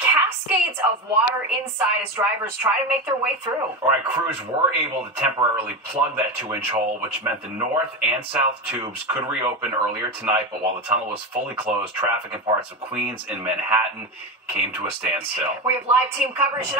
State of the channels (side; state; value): both; normal; correlation 0.19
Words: of water inside as drivers try to make their way through. All right, crews were able to temporarily plug that 2-inch hole, which meant the north and south tubes could reopen earlier tonight. But while the tunnel was fully closed, traffic in parts of Queens and Manhattan came to a standstill. We have live team coverage